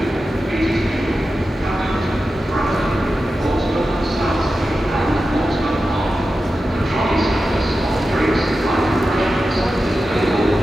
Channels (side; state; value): both; normal; correlation 0.92